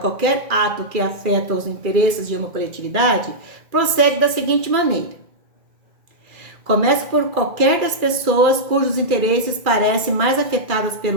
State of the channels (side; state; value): left; late; 2.3 ms